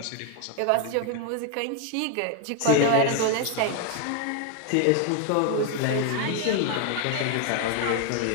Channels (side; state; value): both; different; correlation 0.01